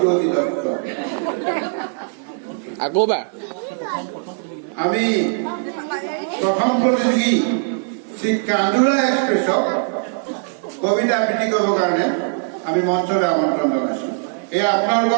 দত্ত। আকৌ বা আমি প্ৰথম প্ৰতিযোগী শ্ৰী কান্দুৰা এক্সপ্ৰেছক কবিতা আবৃত্তি কৰিবৰ কাৰণে আমি মঞ্চলৈ আমন্ত্ৰণ জনাইছোঁ। এই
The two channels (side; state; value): left; silent; 66 dB below the other